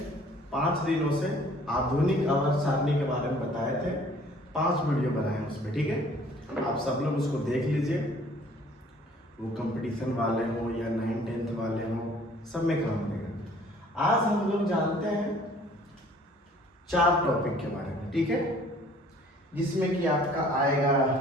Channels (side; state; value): both; normal; correlation 0.55